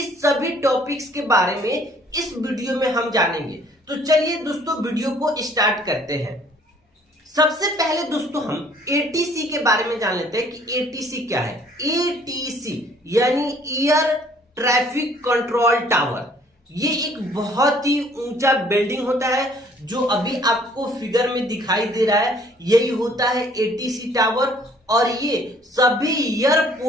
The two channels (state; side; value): normal; both; correlation 0.59